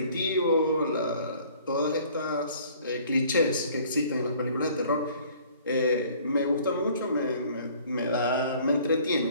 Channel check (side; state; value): both; inverted; correlation -0.54